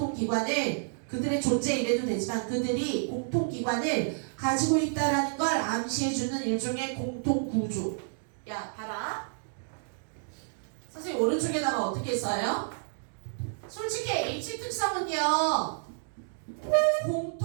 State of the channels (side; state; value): left; silent; digital silence